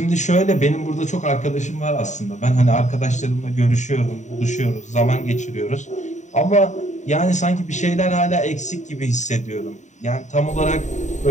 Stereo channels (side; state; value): right; late; 0.34 ms